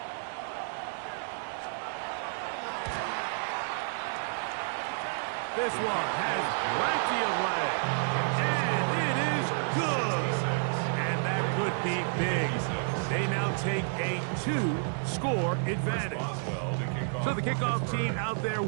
This one has plenty of leg. And it is good. And that could be big. They now take a 2-score advantage. So the kickoff team out there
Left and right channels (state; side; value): silent; left; digital silence